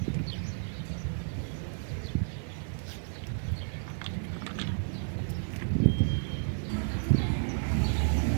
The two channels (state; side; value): silent; left; digital silence